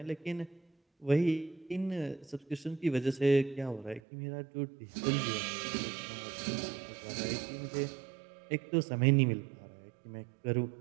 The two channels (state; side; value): drops out; left; at 4.0 s